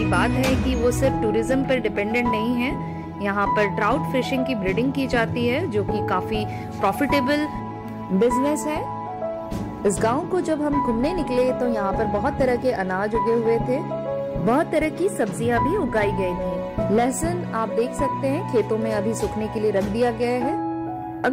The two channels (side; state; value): both; identical; correlation 1.00